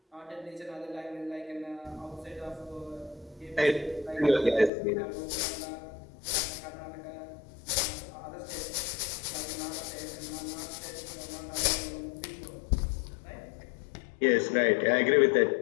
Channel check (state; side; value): drops out; right; at 4.7 s